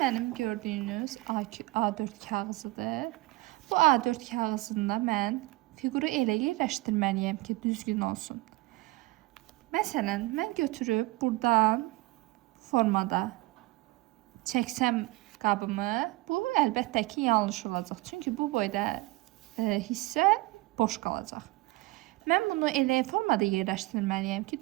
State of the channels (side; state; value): left; quieter; 21.0 dB